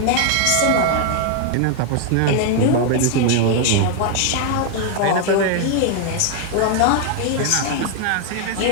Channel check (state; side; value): different; both; correlation 0.00